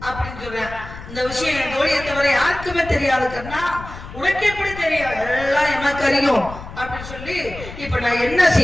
அப்படின்னு சொல்றேன். இந்த விஷயம் என் தோழியை தவிர யாருக்குமே தெரியாது. கண்ணா உனக்கு எப்படி தெரியும்? எல்லாம் எனக்கு அறியும் அப்படின்னு சொல்லி இப்ப நான் என்ன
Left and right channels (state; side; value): noise; left; rumble, 13 dB below the sound